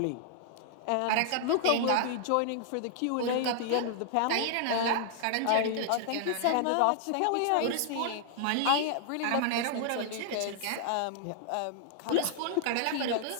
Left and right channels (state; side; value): different; both; correlation -0.01